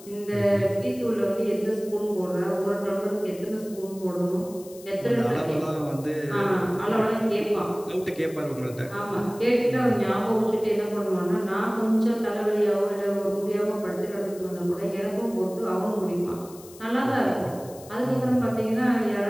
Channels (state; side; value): noise; left; hiss, 20 dB below the sound